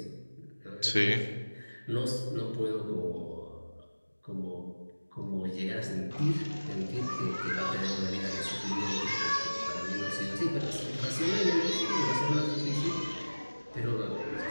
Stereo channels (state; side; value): inverted; both; correlation -1.00